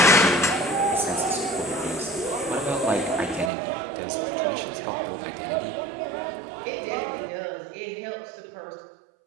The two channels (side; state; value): left; drops out; at 3.5 s